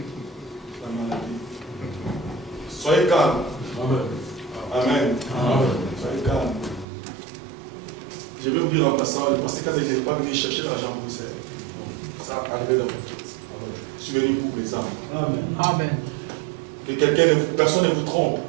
La maladie. Soyez calme. Amen. Amen. Amen. Soyez calme. Je vais vous dire en passant, le pasteur Kaza n'est pas venu chercher l'argent pour Bruxelles. Ça a arrivé dans votre tête. Je suis venu pour les âmes. Amen. Amen. Que personne ne vous trompe.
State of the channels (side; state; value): left; drops out; at 6.9 s